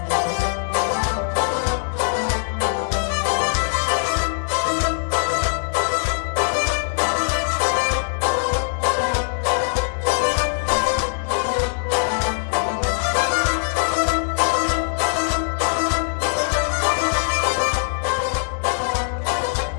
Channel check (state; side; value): silent; right; digital silence